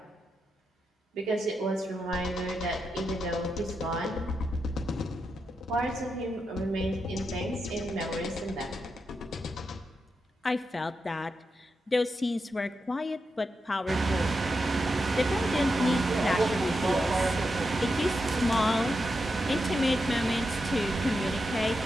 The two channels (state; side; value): normal; both; correlation 0.86